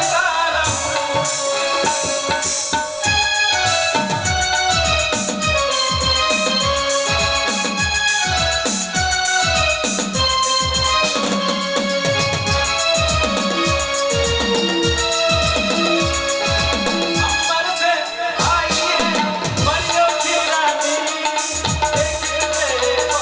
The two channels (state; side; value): identical; both; correlation 1.00